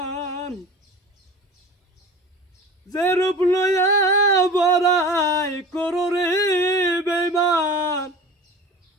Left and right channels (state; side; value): normal; both; correlation 0.36